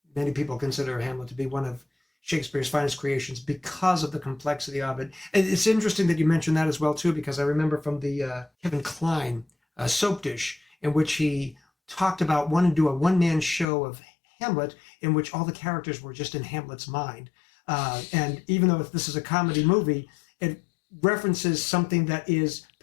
many people consider Hamlet to be one of Shakespeare's finest creations because of the complexity of it. And it's interesting that you mentioned that as well too, because I remember from the Kevin Kline soap dish, in which he talked about wanting to do a one-man show of Hamlet in which all the characters were just in Hamlet's mind. And even though this is a comedy movie, it references something that is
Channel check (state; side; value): drops out; right; at 13.7 s